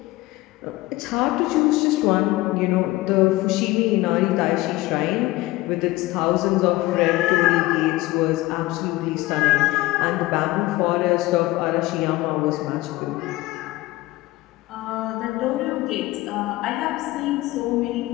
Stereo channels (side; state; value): right; quieter; 18.7 dB